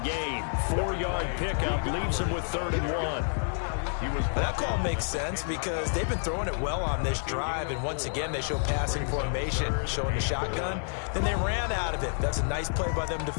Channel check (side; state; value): right; silent; 59 dB below the other